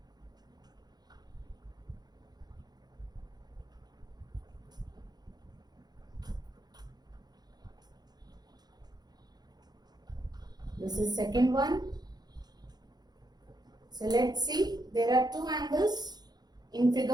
This is second one. So let's see, there are two angles in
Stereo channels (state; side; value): late; left; 0.19 ms